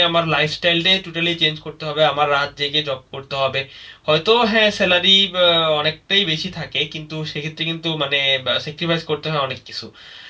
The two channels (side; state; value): both; identical; correlation 1.00